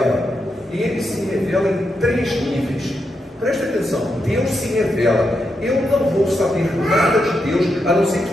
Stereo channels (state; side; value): normal; both; correlation 0.84